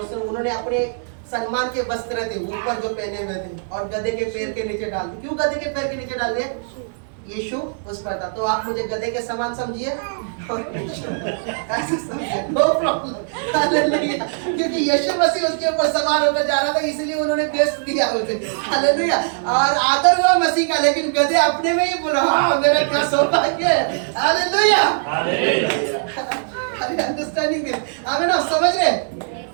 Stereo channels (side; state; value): left; silent; digital silence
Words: अपने सम्मान के वस्त्र थे ऊपर जो पहने हुए थे और गधे के पैर के नीचे डाल दिए। क्यों गधे के पैर के नीचे डाल दिए? यीशु उस पर था। तो आप मुझे गधे के समान समझिए और ऐसे समझिए, नो प्रॉब्लम। हालेलुया। क्योंकि यीशु मसीह उसके ऊपर सवार होकर जा रहा था, इसलिए उन्होंने बेस्ट दिया उसे। हालेलुया। और आदर हुआ मसीह का, लेकिन गधे अपने में ही बोला, हाँ मेरा क्या सौभाग्य है। हालेलुया। अरे अंडरस्टैंडिंग दिस। आमीन। आप समझ रहे?